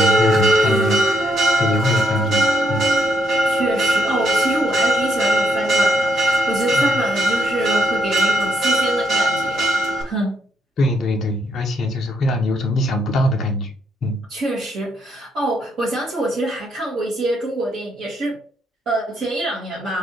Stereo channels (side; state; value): both; normal; correlation 0.75